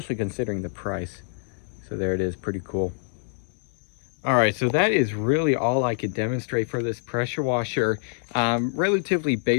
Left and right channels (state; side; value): silent; right; digital silence